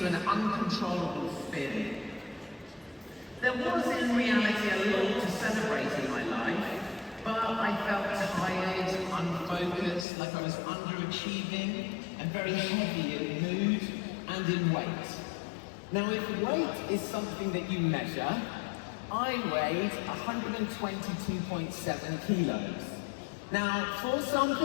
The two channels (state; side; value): drops out; right; at 10.1 s